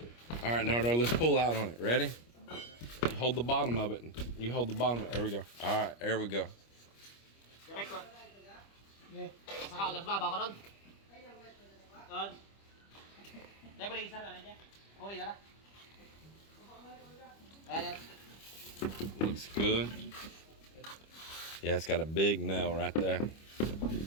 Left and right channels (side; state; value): right; late; 25 ms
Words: All right, Nardo, let's pull out on it. Ready? You hold the bottom of it. You hold the bottom of it. There we go. All right, there we go. Looks good. Yeah, it's got a big nail right there.